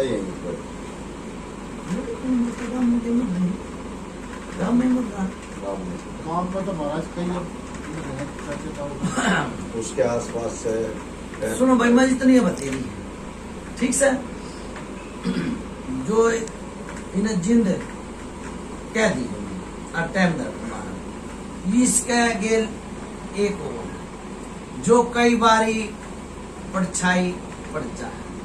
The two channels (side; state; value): both; identical; correlation 1.00